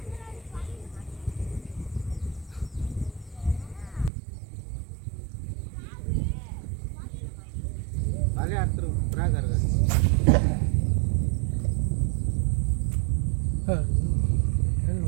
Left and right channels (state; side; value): drops out; left; at 4.1 s